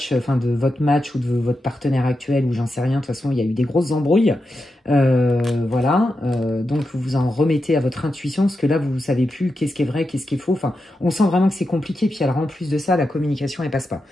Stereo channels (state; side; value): normal; both; correlation 0.88